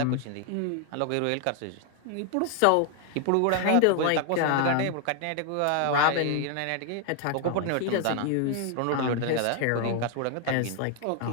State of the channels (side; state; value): both; different; correlation 0.00